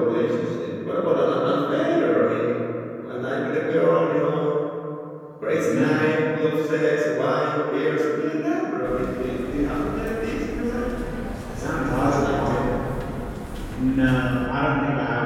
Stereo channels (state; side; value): identical; both; correlation 1.00